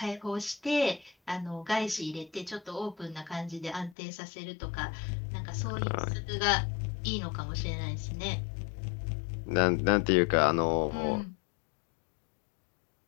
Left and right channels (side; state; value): right; drops out; at 4.0 s